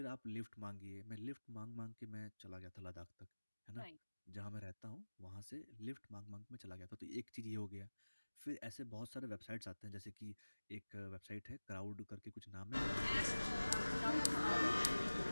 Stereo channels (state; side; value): inverted; both; correlation -1.00